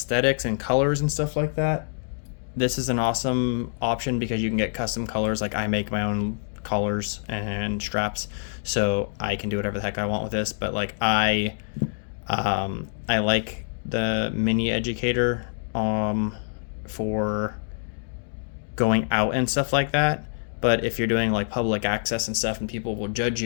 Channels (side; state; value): right; silent; digital silence